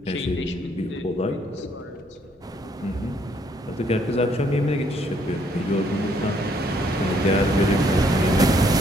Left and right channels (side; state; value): both; normal; correlation 0.68